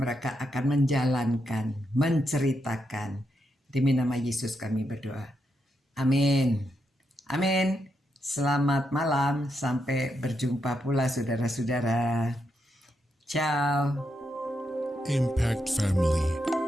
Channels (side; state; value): both; normal; correlation 0.82